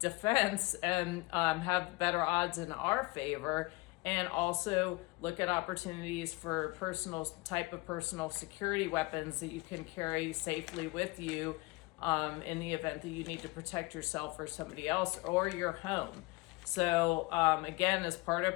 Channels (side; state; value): right; quieter; 23.8 dB